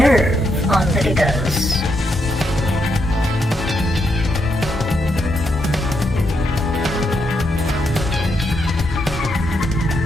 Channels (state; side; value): normal; both; correlation 0.80